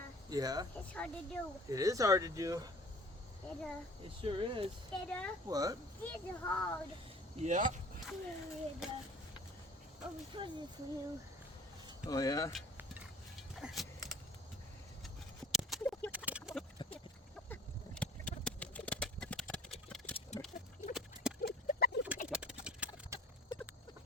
Yeah. it's hard to do. It is hard to do. Dada, It sure is. Dada, What? it's hard. Yeah. Dada, oh, we put this for you. Oh yeah?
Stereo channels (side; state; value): both; normal; correlation 0.48